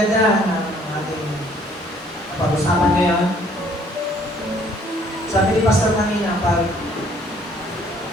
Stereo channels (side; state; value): both; normal; correlation 0.61